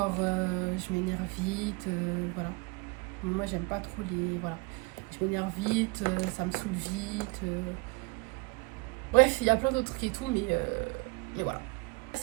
je m'énerve vite, voilà. Moi, j'aime pas trop les... Voilà. Je m'énerve vite, ça me saoule vite. Bref, il y a plein d'autres trucs et tout, mais voilà.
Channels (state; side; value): quieter; left; 26.6 dB